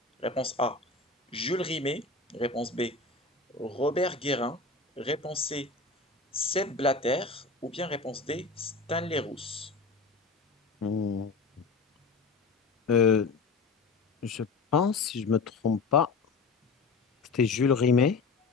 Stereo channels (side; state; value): right; quieter; 4.1 dB